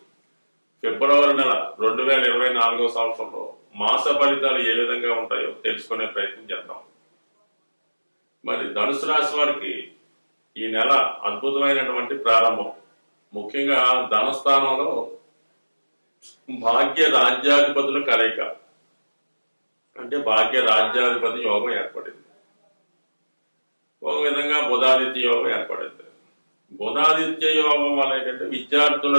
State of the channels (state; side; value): inverted; both; correlation -1.00